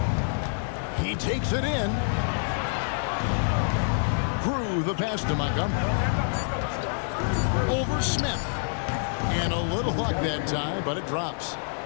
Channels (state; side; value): silent; right; digital silence